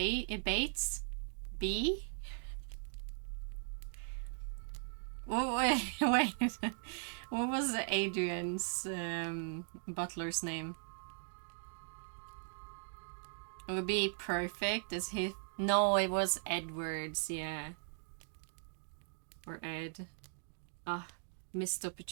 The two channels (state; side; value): silent; left; digital silence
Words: Oh, wait. What was Adrian's butler's name? It would be perfect as he. No, it was Edwards, yeah. Or Ed. Ah, missed